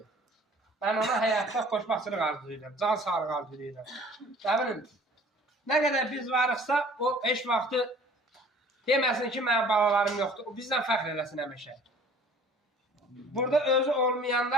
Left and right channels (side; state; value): both; normal; correlation 0.50